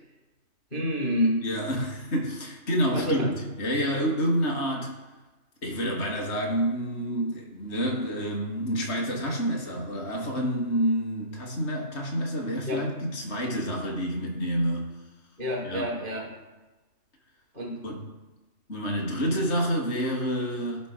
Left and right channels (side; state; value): right; late; 3.1 ms